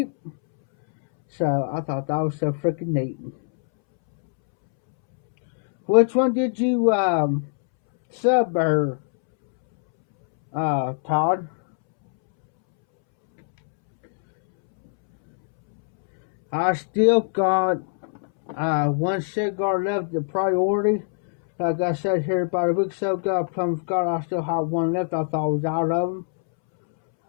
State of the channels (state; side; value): silent; right; 64 dB below the other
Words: So I thought that was so freaking neat. Which one did you sub her, Todd? I still got one cigar left, the priority. Like I said here about a week or so ago, plum cigar, I still have one left. I thought I was out of them.